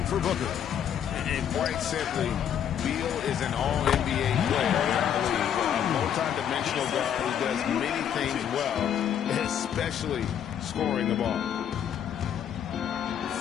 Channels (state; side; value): quieter; right; 9.1 dB